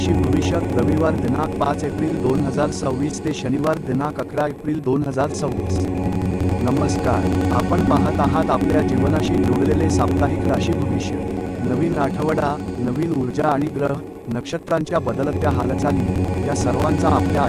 भविष्य रविवार दिनांक 5 एप्रिल 2026 ते शनिवार दिनांक 11 एप्रिल 2026। नमस्कार, आपण पाहत आहात आपल्या जीवनाशी जोडलेले साप्ताहिक राशी भविष्य। नवीन आठवडा, नवीन ऊर्जा आणि ग्रह नक्षत्रांच्या बदलत्या हालचाली या सर्वांचा आपल्या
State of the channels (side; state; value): both; identical; correlation 1.00